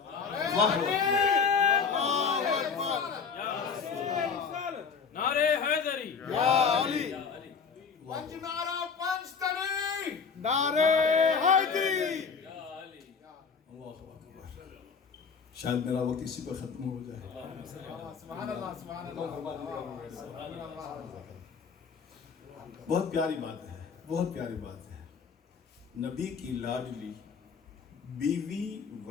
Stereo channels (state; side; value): quieter; right; 5.9 dB